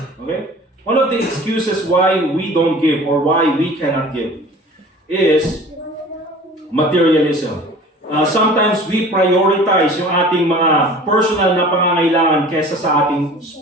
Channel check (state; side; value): normal; both; correlation 0.44